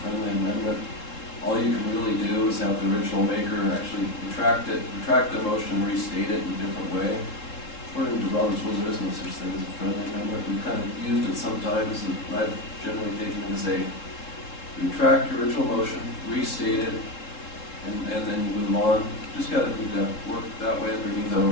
friendly amendment. All you can really do is have the original maker actually retract the motion and restate it in a different way. According to Robert's rules, there is no such thing as a friendly amendment. We've kind of used it sometimes, and I've generally taken it as a retract your original motion, restate it, and then you move on. Just gotta need to work that way underneath our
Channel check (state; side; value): late; right; 3.7 ms